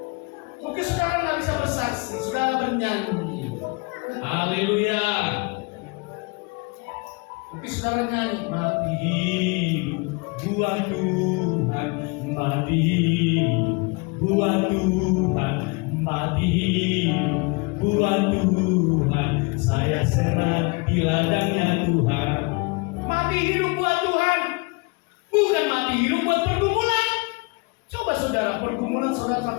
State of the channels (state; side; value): quieter; right; 29.2 dB